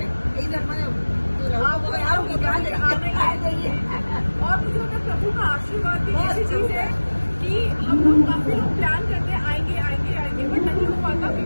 इधर मैंने और मुझे उनका प्रभु का आशीर्वाद भी ऐसी चीज है कि हम लोग काफी लोग प्लान करते हैं आएंगे आएंगे आएंगे, बट नहीं हो पाता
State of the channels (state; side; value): inverted; both; correlation -1.00